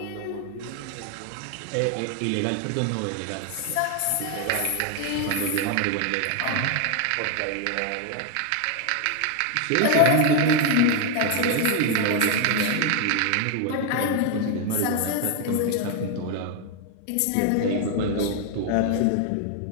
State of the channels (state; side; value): different; both; correlation 0.01